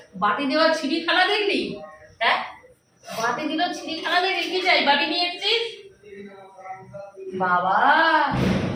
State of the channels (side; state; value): both; identical; correlation 1.00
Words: বাটি দেওয়া ছিঁড়িখানা দেখলি? হ্যাঁ, বাটি দিল ছিঁড়িখানা দেখলি? কি চাই? বাটি নিয়ে এসেছিস? বাবা,